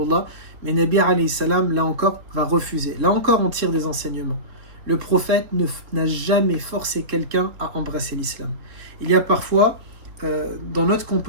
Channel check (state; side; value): late; left; 3.6 ms